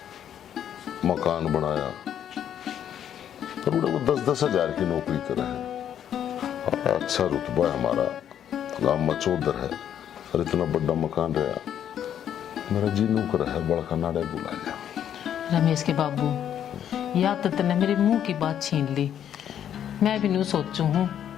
मकान बनाया, और वो 10-10 हजार की नौकरी करे है, अच्छा रुतबा है हमारा, गांव में चौधर है और इतना बड़ा मकान रहा। मेरा जी नौकर है, बड़का नाड़े बुला लिया। रमेश के बाबू, या तो तने मेरे मुंह की बात छीन ली। मैं भी नहीं सोचू हूँ,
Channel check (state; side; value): quieter; right; 9.8 dB